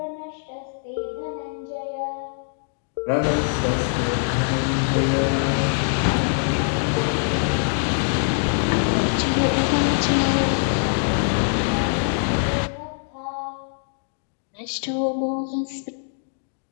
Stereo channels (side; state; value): right; silent; digital silence